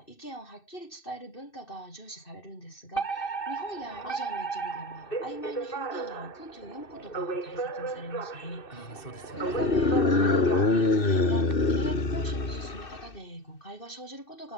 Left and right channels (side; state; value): right; late; 2.6 ms